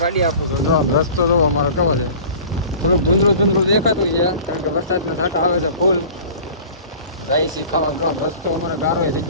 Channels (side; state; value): both; inverted; correlation -0.42